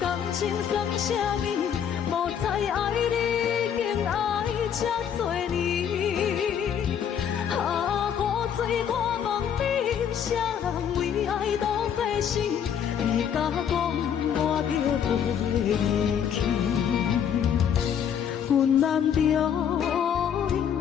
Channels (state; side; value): quieter; right; 8.5 dB